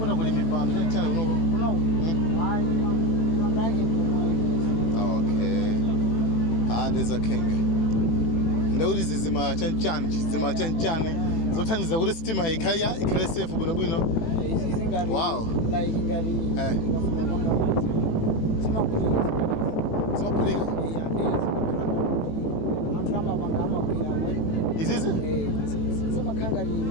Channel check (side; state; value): right; late; 18 ms